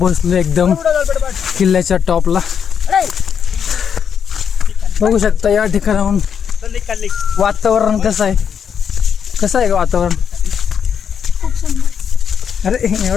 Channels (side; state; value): right; quieter; 7.5 dB